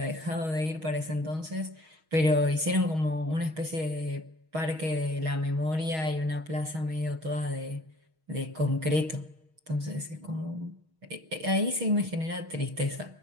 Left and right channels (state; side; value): late; left; 6.3 ms